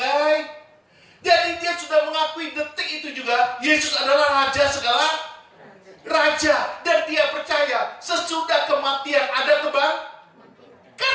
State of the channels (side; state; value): both; identical; correlation 1.00